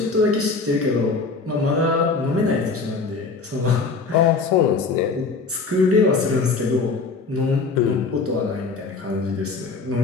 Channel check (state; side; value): quieter; right; 4.3 dB